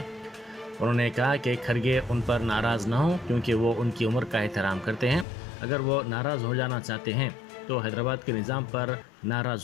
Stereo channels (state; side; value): drops out; right; at 5.2 s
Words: उन्होंने कहा कि खड़गे उन पर नाराज न हों क्योंकि वो उनकी उम्र का एहतराम करते हैं। अगर वो नाराज हो जाना चाहते हैं तो हैदराबाद के निज़ाम पर